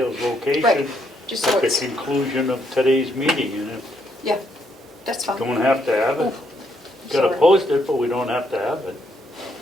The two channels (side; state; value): both; normal; correlation 0.74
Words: location Right, just so at the it's, conclusion of today's meeting, and if yeah, that's fine. don't have to have it. Gotta Sorry. post it, but we don't have to have it.